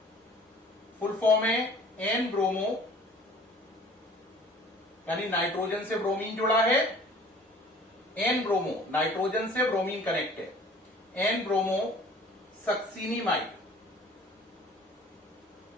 फुल फॉर्म है N ब्रोमो, यानी नाइट्रोजन से ब्रोमीन जुड़ा है। N ब्रोमो, नाइट्रोजन से ब्रोमीन कनेक्ट है। N bromo succinimide.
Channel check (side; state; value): both; normal; correlation 0.49